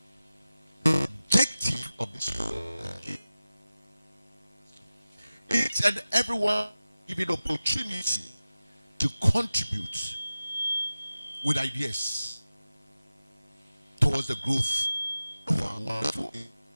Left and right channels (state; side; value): inverted; both; correlation -0.95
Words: the objective of this program, each and everyone given opportunity to contribute with ideas towards the growth of our wonderful